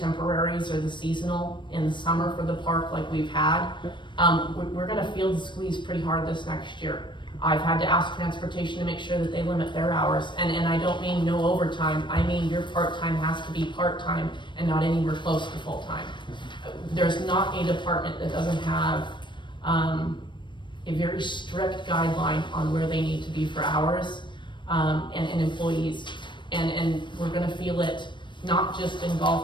or the seasonal in the summer for the park like we've had. We're gonna feel the squeeze pretty hard this next year. I've had to ask transportation to make sure that they limit their hours, and I don't mean no overtime, I mean your part-time has to be part-time and not anywhere close to full-time. There's not a department that doesn't have, a very strict guideline on where they need to be for hours, and employees. And we're gonna feel it, not just in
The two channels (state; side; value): late; right; 0.23 ms